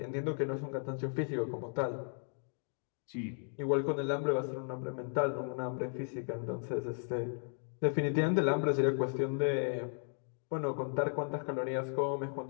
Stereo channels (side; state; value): right; silent; 54 dB below the other